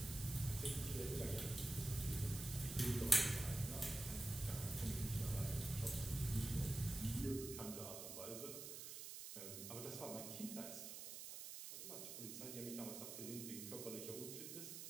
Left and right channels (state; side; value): noise; right; hiss, 8 dB below the sound